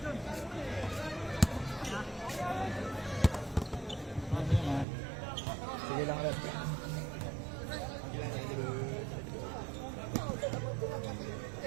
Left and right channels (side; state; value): left; drops out; at 4.9 s